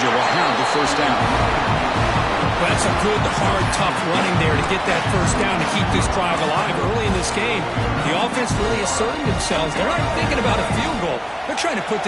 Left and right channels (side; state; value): both; identical; correlation 1.00